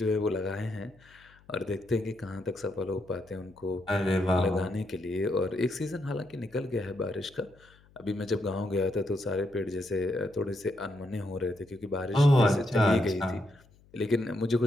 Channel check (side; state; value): left; noise; hum, 28 dB below the sound